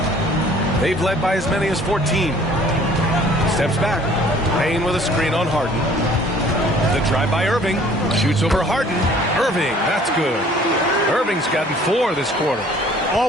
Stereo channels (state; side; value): normal; both; correlation 0.54